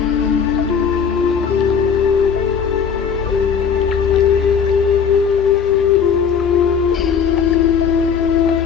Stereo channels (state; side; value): quieter; right; 6.8 dB